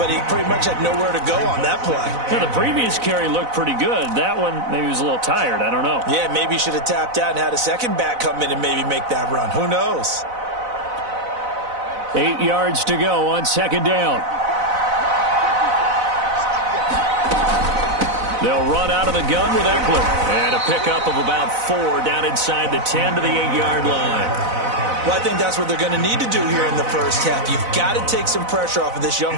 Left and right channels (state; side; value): late; left; 4.0 ms